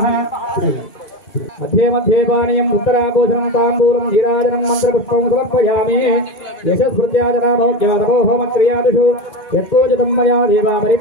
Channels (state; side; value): late; right; 2.4 ms